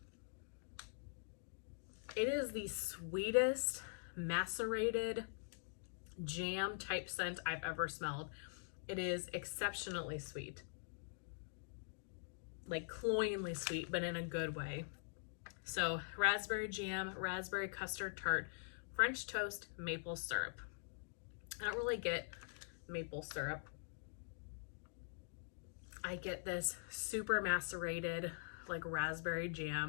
It is the sweetest macerated jam type scent I've ever smelled. It is exceptionally sweet, like cloyingly sweet, but in a good way. So raspberry jam, raspberry custard tart, French toast, maple syrup. I don't really get maple syrup. I get this super macerated, like raspberry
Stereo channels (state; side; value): silent; right; digital silence